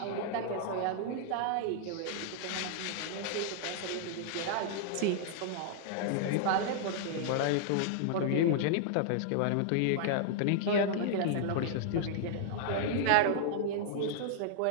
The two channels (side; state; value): both; different; correlation -0.01